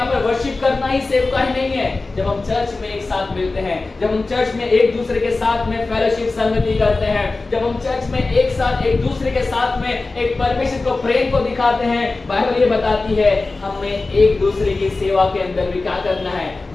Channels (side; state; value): right; quieter; 3.5 dB